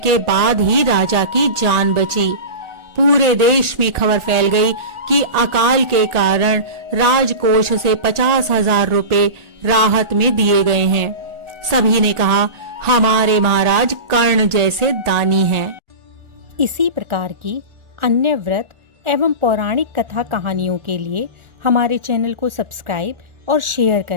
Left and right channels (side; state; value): left; late; 1.4 ms